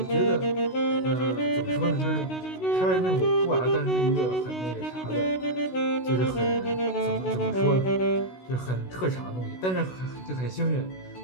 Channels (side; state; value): right; late; 16 ms